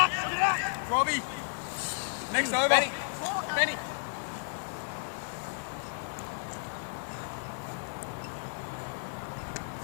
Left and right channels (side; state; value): right; silent; digital silence